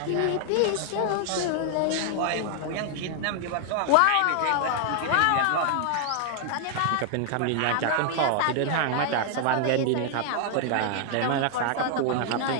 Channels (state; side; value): different; both; correlation 0.00